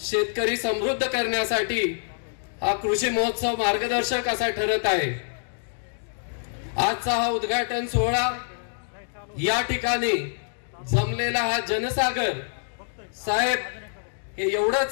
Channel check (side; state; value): right; silent; digital silence